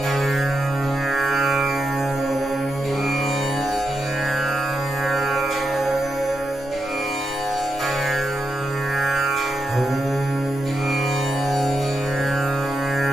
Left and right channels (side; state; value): both; normal; correlation 0.85